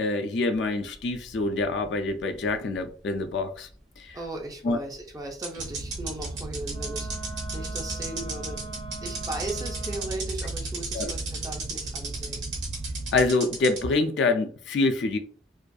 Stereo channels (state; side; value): normal; both; correlation 0.47